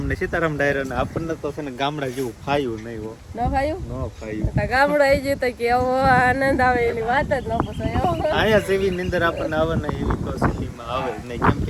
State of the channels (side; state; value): both; identical; correlation 1.00